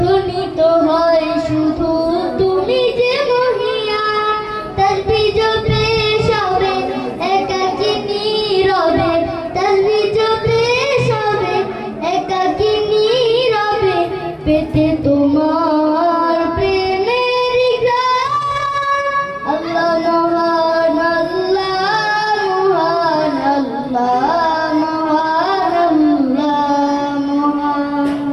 হয় শুধু তুমি যে মহিয়ান। তাসবিহ জপে সবে একাকী নীরবে, তাসবিহ জপে সবে একাকী নীরবে, পেতে তোমার প্রেমের গান। আল্লাহ মহান, আল্লাহ মহান, আল্লাহ মহান,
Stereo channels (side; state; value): both; identical; correlation 1.00